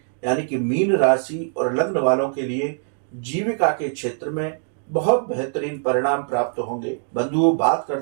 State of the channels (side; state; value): left; silent; digital silence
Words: यानी कि मीन राशि और लग्न वालों के लिए जीविका के क्षेत्र में बहुत बेहतरीन परिणाम प्राप्त होंगे। बंधुओं, बात